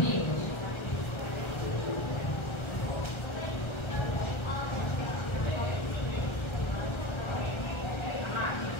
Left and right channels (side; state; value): right; late; 1.3 ms